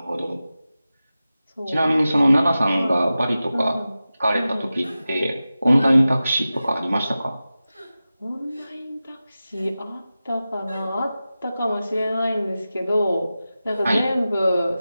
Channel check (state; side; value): inverted; both; correlation -0.94